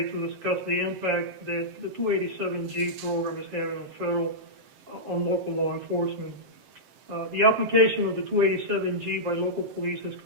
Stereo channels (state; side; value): late; left; 7.6 ms